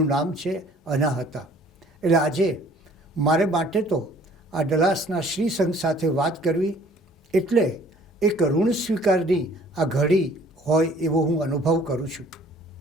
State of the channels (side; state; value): both; normal; correlation 0.55